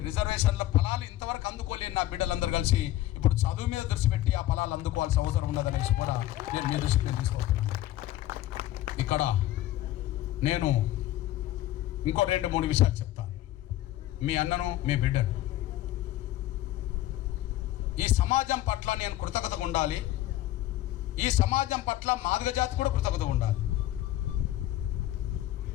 రిజర్వేషన్ల ఫలాలు ఇంతవరకు అందుకోలేని నా బిడ్డలందరూ కలిసి ఇప్పుడు చదువు మీద దృష్టి పెట్టి ఆ ఫలాలు అందుకోవాల్సిన అవసరం ఉన్నదనేసి కూడా నేను మీ దృష్టికి తీసుకొస్తున్నాను. ఇక్కడ నేను ఇంకో 2-3 విషయాలు చెప్తాను. మీ అన్నను, మీ బిడ్డను, ఈ సమాజం పట్ల నేను కృతజ్ఞతగా ఉండాలి. ఈ సమాజం పట్ల మాదిగ జాతి కూడా కృతజ్ఞతగా ఉండాలి.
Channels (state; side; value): quieter; right; 14.6 dB